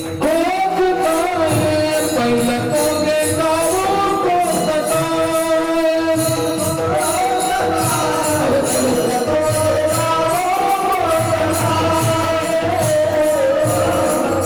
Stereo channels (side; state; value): both; identical; correlation 1.00